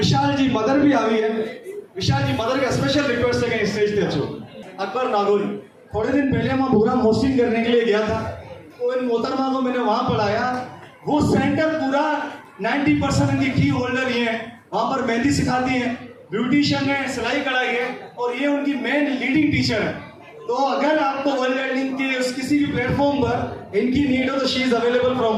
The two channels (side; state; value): both; identical; correlation 1.00